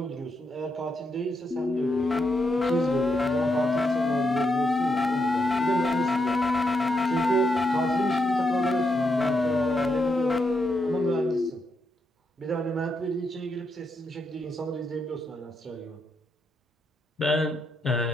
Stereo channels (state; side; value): normal; both; correlation 0.81